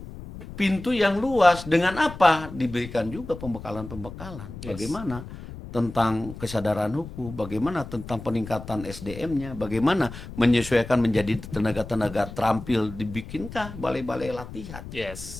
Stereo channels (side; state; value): left; noise; rumble, 13 dB below the sound